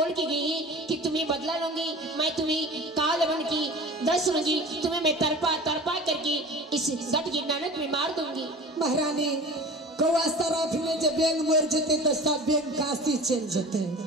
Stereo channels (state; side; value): normal; both; correlation 0.38